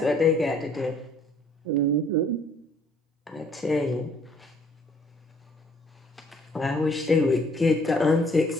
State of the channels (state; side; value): normal; both; correlation 0.61